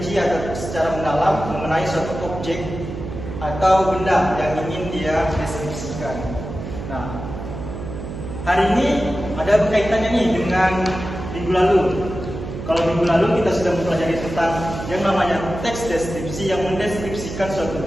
atau secara mendalam mengenai suatu objek atau benda yang ingin dia deskripsikan. Nah, hari ini ada kaitannya nih dengan minggu lalu. Kalau minggu lalu kita sudah mempelajari tentang yang namanya teks deskripsi yang mendeskripsikan suatu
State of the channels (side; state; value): right; noise; hum, 8 dB below the sound